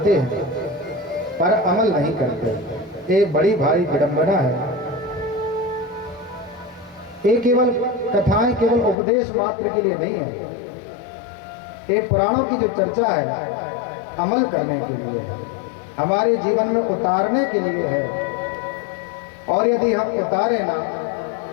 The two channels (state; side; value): drops out; right; at 9.0 s